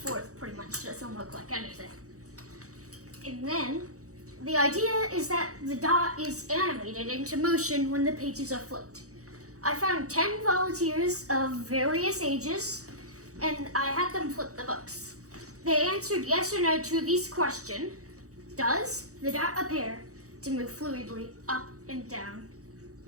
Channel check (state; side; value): late; left; 0.65 ms